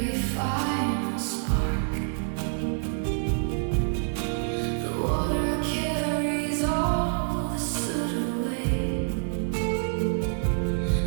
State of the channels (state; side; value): silent; left; digital silence